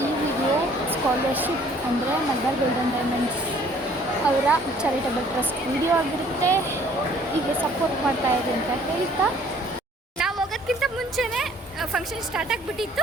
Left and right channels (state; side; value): normal; both; correlation 0.57